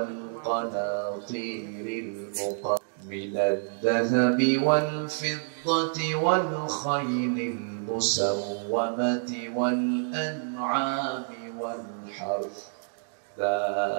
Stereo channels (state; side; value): silent; left; digital silence